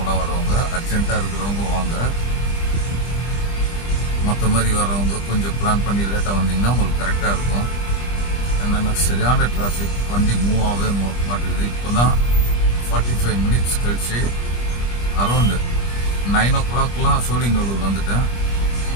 வரவங்க, அர்ஜென்ட்டாக இருக்கிறவங்க வாங்க. மற்ற மாதிரி வரவங்க கொஞ்சம் பிளான் பண்ணி லேட்டாக வந்தீங்கன்னா உங்களுக்கு கரெக்டாக இருக்கும். என்னென்னா சரியான டிராஃபிக், வண்டி மூவ் ஆகவே மாட்டேங்குது. இப்போ தான் 45 மினிட்ஸ் கழிச்சு அரௌண்டு 9 o'clockலாம் சோழிங்கநல்லூர் வந்துட்டேன்.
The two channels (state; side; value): late; right; 25 ms